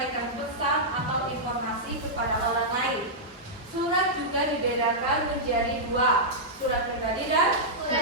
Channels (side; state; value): both; normal; correlation -0.10